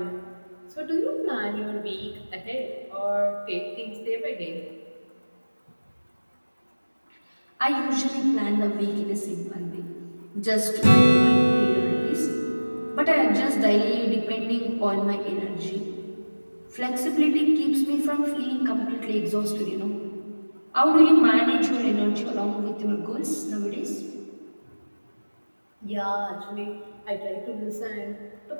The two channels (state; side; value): inverted; both; correlation -1.00